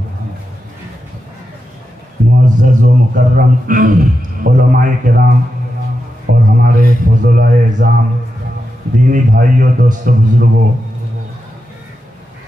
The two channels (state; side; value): normal; both; correlation 0.88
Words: معزز و مکرم علماء کرام اور ہمارے فضلاء اعظام، دینی بھائیوں، دوستوں، بزرگوں،